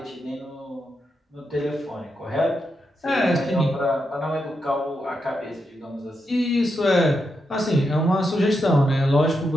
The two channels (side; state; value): both; normal; correlation 0.84